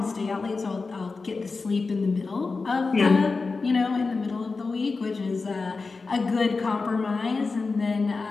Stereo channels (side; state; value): right; quieter; 4.1 dB